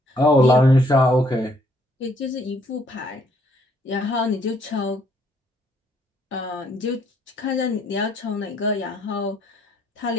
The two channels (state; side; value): normal; both; correlation 0.67